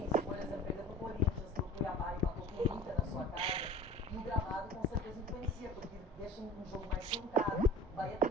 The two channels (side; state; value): both; normal; correlation 0.40